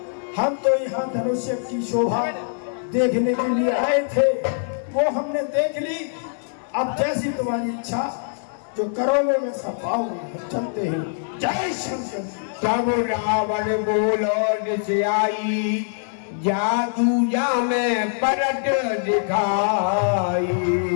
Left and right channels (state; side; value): silent; right; digital silence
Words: हम तो यहाँ धनुष्य की शोभा देखने के लिए आए थे, वो हमने देख ली। अब जैसी तुम्हारी इच्छा, जो करोगे में सब पाओगे। चलते हैं। जय शंकर। तब रावण बोलो निश्चयाई, जादू जा में परट दिखाई।